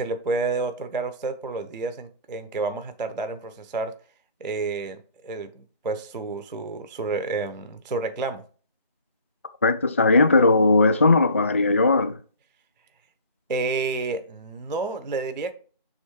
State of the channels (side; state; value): both; inverted; correlation -0.48